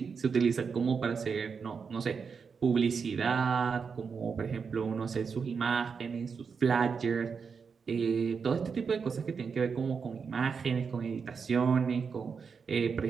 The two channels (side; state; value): left; quieter; 5.8 dB